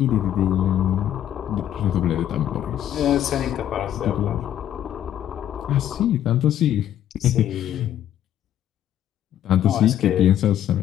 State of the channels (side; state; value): right; quieter; 11.1 dB